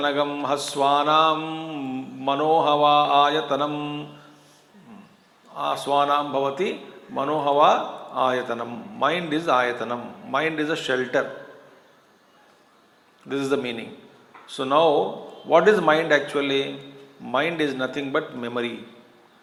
haswanam manohava ayatanam aswanam bhavati manohava ayatanam. Mind is ayatanam. Mind is a shelter. This is the meaning. So now, what is mind actually? Mind is nothing but memory.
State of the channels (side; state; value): both; identical; correlation 1.00